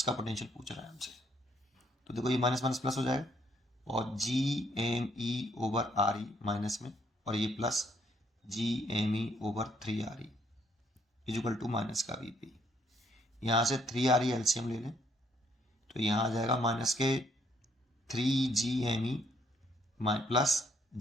पोटेंशियल पूछ रहा है हमसे। तो देखो ये माइनस माइनस प्लस हो जाएगा, और G M E over R E minus में, और ये plus G M E over 3 R E equal to minus का वी पी। यहाँ से 3 आर ई एलसीएम ले लें तो यहाँ आ जाएगा माइनस के 3 G M E plus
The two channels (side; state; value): both; normal; correlation 0.69